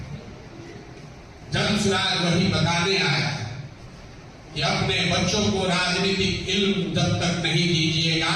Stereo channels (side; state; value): both; identical; correlation 1.00